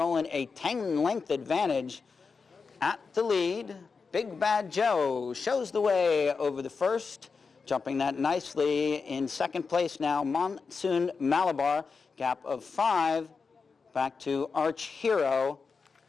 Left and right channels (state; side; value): quieter; right; 4.9 dB